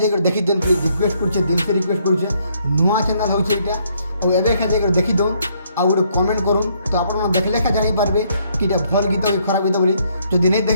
देखि देन। प्लीज रिक्वेस्ट करछे, दिल से रिक्वेस्ट करछे, नुआ चैनल होचे एटा। और एबे एखा जाकर देखि दो आ गोटे कमेंट करूँ तो आप देखले एखा जानि पारबे कि इटा भल गीत कि खराब गीत बोली। जदि नहीं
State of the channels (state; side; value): inverted; both; correlation -0.69